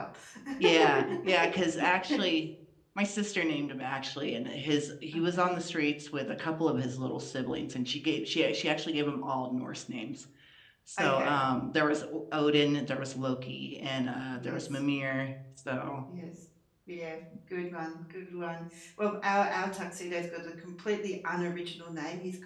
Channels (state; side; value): identical; both; correlation 1.00